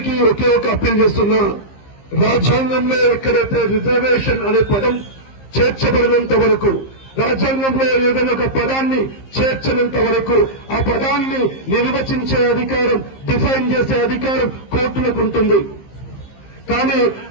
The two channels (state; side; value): late; right; 15 ms